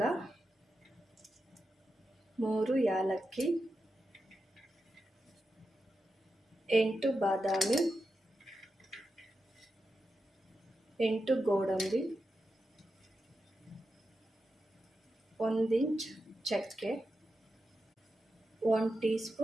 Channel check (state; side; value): normal; both; correlation 0.89